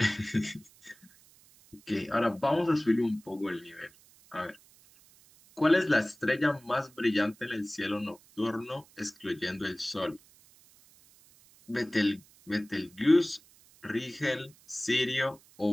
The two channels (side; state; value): right; noise; hiss, 27 dB below the sound